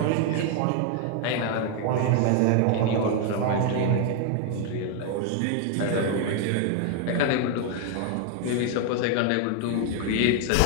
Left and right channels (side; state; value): both; different; correlation 0.01